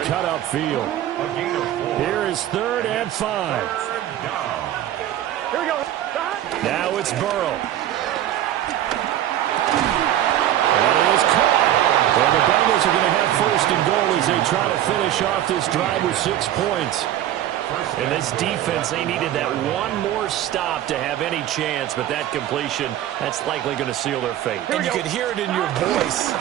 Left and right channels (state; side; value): quieter; left; 12.3 dB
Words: cut upfield. Here is 3rd and 5. Here we go. Now it's Burrow. And it is caught. And the Bengals are going to have 1st and goal as they try to finish off this drive with 6 points. And this defense, they needed that one more stop to have any chance, but that completion, that's likely going to seal their fate. And you could hear it in your voice,